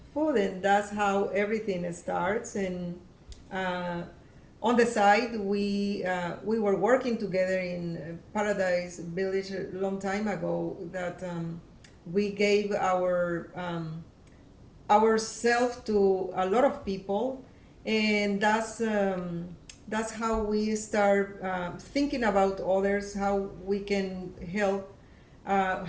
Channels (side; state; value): both; identical; correlation 1.00